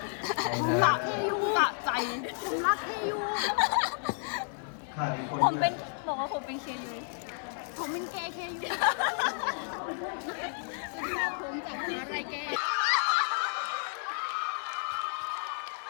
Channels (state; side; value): silent; right; 57 dB below the other